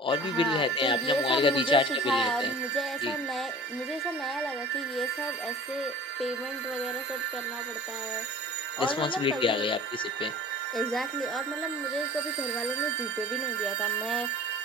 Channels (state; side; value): normal; both; correlation 0.43